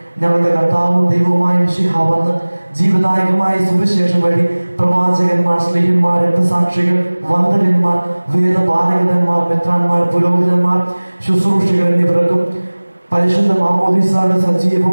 ഞങ്ങളുടെ കർത്താവും ദൈവവുമായ മിശിഹ വന്ന് ജീവദായകമായ സുവിശേഷം വഴി പ്രവാചകന്മാർ, സ്ത്രീയന്മാർ, രക്തസാക്ഷികൾ, വന്ദകന്മാർ, വേദപാരകന്മാർ, മെത്രാന്മാർ, പുരോഹിതന്മാർ, ശുശ്രൂഷികൾ എന്നിവർക്കും പരിശുദ്ധ മാമോദീസയുടെ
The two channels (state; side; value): inverted; both; correlation -1.00